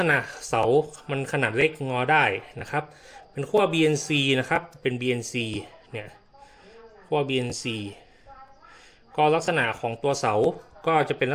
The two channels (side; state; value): both; identical; correlation 1.00